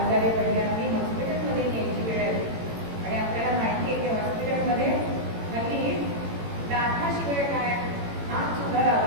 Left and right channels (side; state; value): left; late; 18 ms